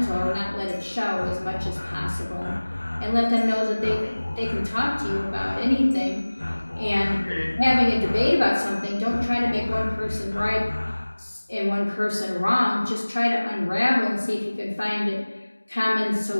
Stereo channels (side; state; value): both; inverted; correlation -1.00